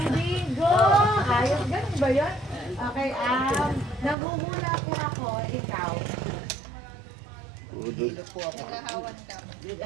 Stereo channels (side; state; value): left; drops out; at 4.2 s